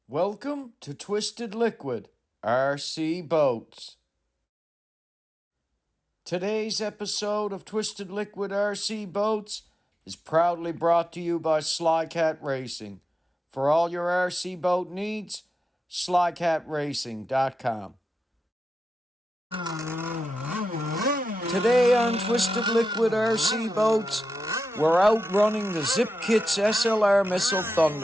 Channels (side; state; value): both; normal; correlation 0.91